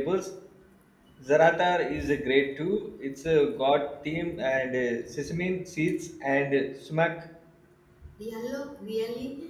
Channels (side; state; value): both; identical; correlation 1.00